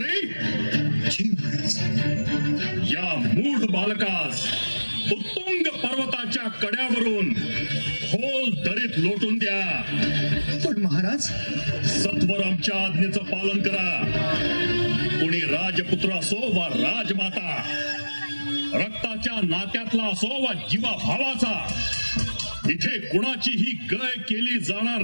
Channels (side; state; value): both; inverted; correlation -1.00